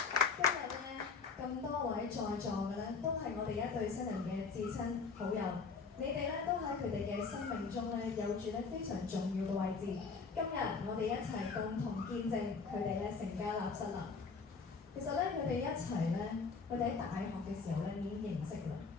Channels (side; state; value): right; quieter; 4.9 dB